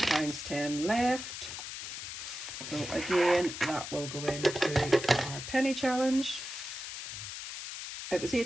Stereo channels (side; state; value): left; noise; hiss, 8 dB below the sound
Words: left. So again, that will go into our penny challenge. It was